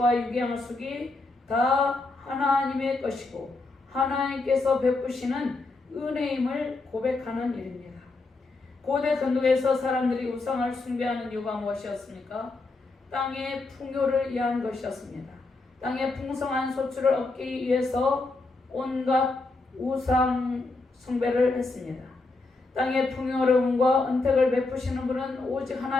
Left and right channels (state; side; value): quieter; right; 3.4 dB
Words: 육의 양식이 다 하나님의 것이고 하나님께서 베푸시는 은혜임을 고백하는 일입니다. 고대 근동에서 사람들이 우상을 숭배하는 이유가 무엇이었습니까? 땅의 풍요를 위한 것이었습니다. 땅의 풍성한 소출을 얻기 위해서 온갖 우상 숭배를 했습니다. 땅의 풍요로움과 은택을 베푸시는 분은 오직